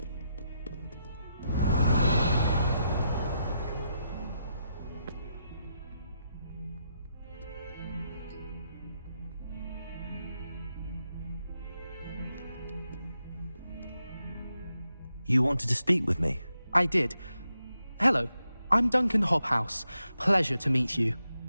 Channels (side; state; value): both; inverted; correlation -0.83